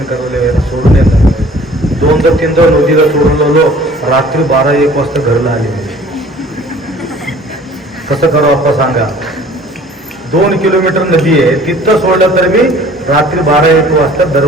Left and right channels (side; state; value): both; normal; correlation 0.51